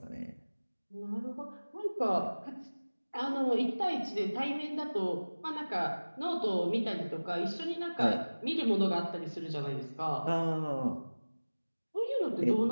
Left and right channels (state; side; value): inverted; both; correlation -1.00